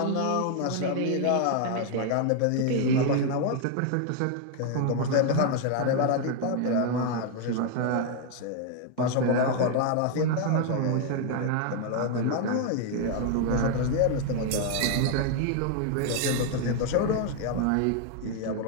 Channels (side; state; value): both; different; correlation 0.00